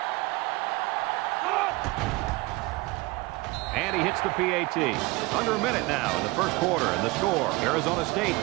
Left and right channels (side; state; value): left; quieter; 22.8 dB